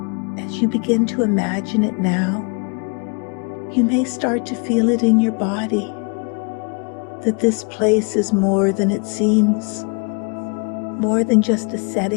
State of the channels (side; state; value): right; quieter; 35.8 dB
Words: as you begin to imagine it now, you may start to feel it in your body, that this place is more than it seems, more than just a